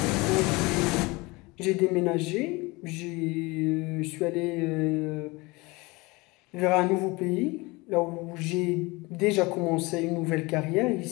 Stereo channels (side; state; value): right; quieter; 24.2 dB